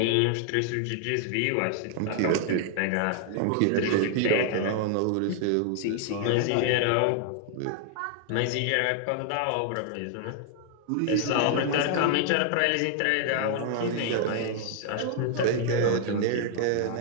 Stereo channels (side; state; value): both; different; correlation 0.00